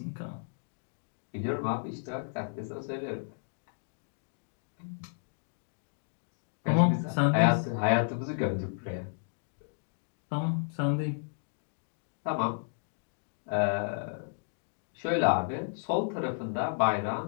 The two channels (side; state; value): right; silent; digital silence